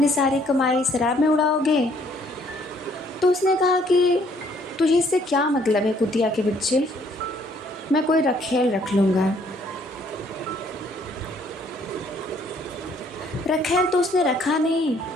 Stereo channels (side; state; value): both; normal; correlation 0.64